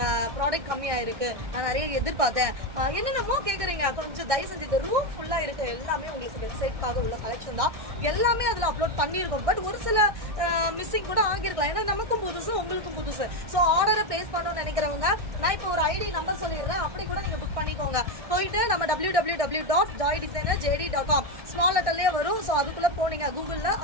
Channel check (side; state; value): left; late; 1.6 ms